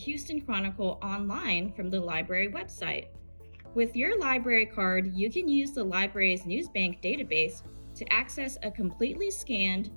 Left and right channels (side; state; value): both; inverted; correlation -1.00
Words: Chronicle online from the library website. With your library card, you can use the library's NewsBank database to access a completely scanned,